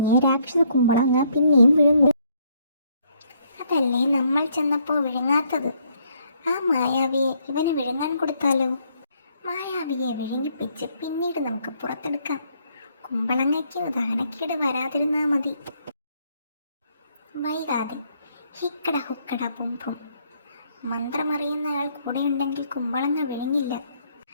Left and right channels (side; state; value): both; inverted; correlation -0.69